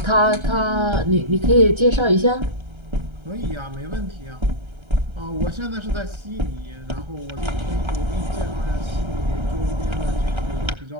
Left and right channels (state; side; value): late; left; 1.3 ms